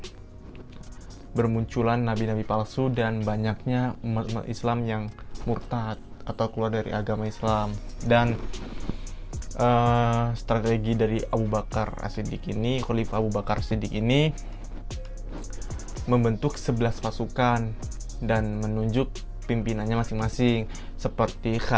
bermunculan nabi-nabi palsu dan banyaknya umat Islam yang murtad atau keluar dari agama Islam. Dan strategi dari Abu Bakar As-Siddiq ini, Khalifah Abu Bakar As-Siddiq ini membentuk 11 pasukan dan menunjuk pimpinannya masing-masing, seperti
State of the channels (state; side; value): identical; both; correlation 1.00